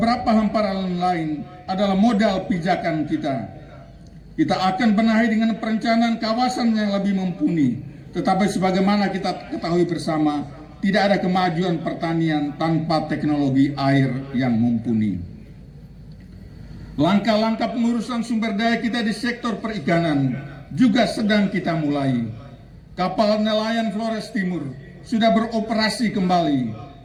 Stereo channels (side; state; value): both; identical; correlation 1.00